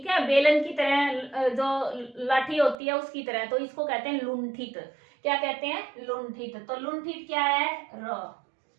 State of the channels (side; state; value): left; drops out; at 2.8 s